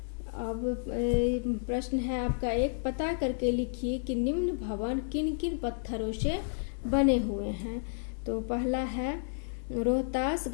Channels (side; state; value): right; silent; digital silence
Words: अब प्रश्न है आपका एक, पता करके लिखिए कि निम्न भवन किन किन पत्थरों से बने हुए हैं। तो पहला है